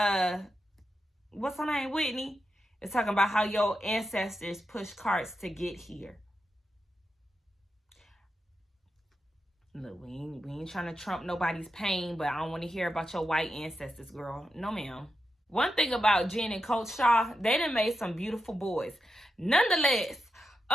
what's her name, Whitney, is talking about how your ancestors pushed carts to get here. Look, we ain't trying to trump nobody's pain, but I don't want to hear about your white ancestors, girl. No, ma'am. One thing about Jen and Coach Shaw, they done made some beautiful boys. Nonetheless,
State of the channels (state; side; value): normal; both; correlation 0.87